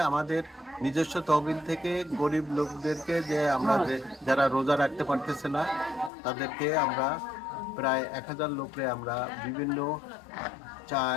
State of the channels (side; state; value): right; drops out; at 6.1 s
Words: আমাদের নিজস্ব তহবিল থেকে গরিব লোকদেরকে যে আমরা যারা রোজা রাখতে পারতেছে না তাদেরকে আমরা প্রায় 1000 লোককে আমরা বিভিন্ন